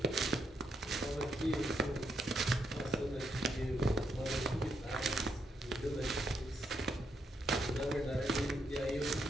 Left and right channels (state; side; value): normal; both; correlation 0.79